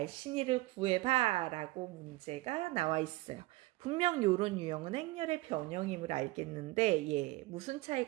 구해봐 라고 문제가 나와 있어요. 분명 이런 유형은 행렬의 변형임을 알겠는데 무슨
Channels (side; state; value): left; quieter; 19.8 dB